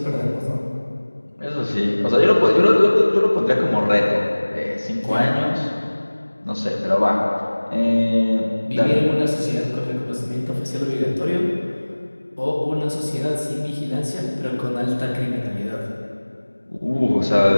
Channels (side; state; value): both; inverted; correlation -1.00